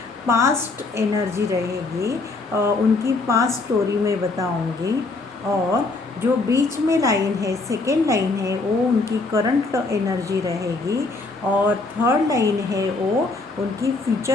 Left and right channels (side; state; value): right; quieter; 3.5 dB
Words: पास्ट एनर्जी रहेगी, उनकी पास्ट स्टोरी में बताऊंगी। और जो बीच में लाइन है, सेकेंड लाइन है, वो उनकी करंट एनर्जी रहेगी और थर्ड लाइन है वो उनकी